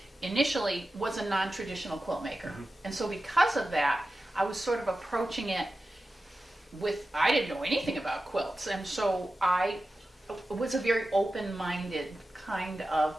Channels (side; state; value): both; normal; correlation 0.93